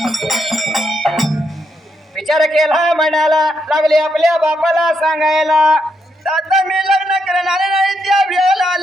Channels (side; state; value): both; normal; correlation 0.79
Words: विचार केला म्हणाला लागले आपल्या बापाला सांगायला. आता मी लग्न करणार नाही त्या वेळेला